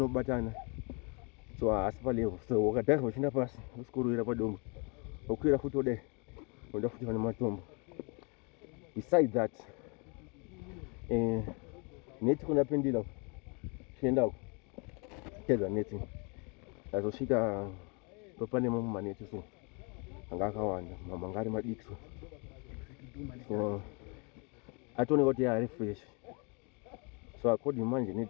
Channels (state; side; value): quieter; right; 33.0 dB